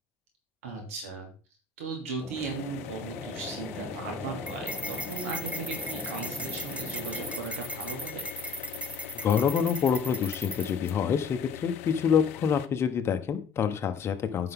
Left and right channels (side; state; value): right; quieter; 5.0 dB